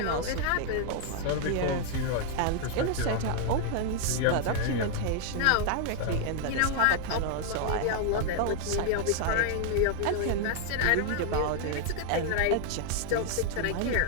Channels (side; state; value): both; different; correlation 0.00